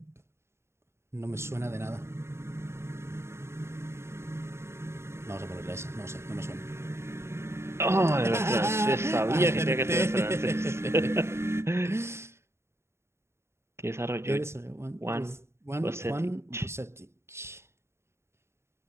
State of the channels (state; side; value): late; left; 0.13 ms